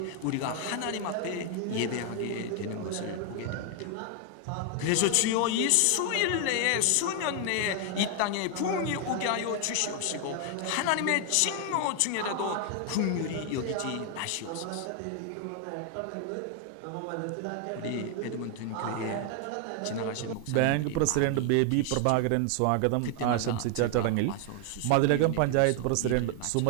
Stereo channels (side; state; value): both; different; correlation 0.00